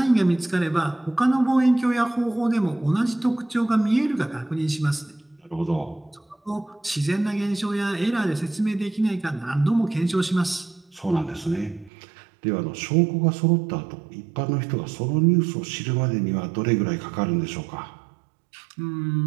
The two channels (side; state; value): left; drops out; at 11.9 s